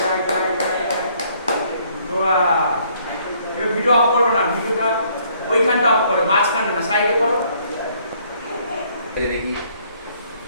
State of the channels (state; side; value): inverted; both; correlation -0.64